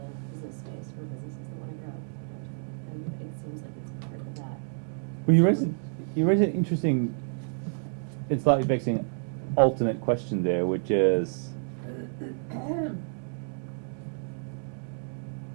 business space for businesses that want to grow downtown, and it seems like it's part of that. Well, you raised an interesting and slightly vexing alternate question there, which is,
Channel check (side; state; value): left; silent; digital silence